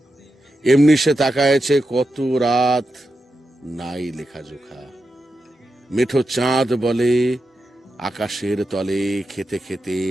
এমনি সে তাকায়েছে কত রাত, নাই লেখা জোখা। মেঠো চাঁদ বলে, আকাশের তলে খেতে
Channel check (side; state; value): both; normal; correlation 0.89